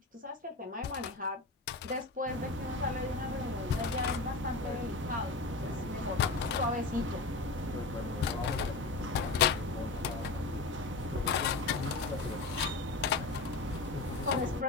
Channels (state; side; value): quieter; right; 3.5 dB